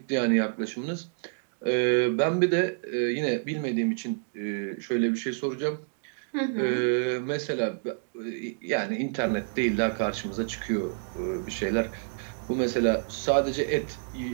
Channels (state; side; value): silent; left; digital silence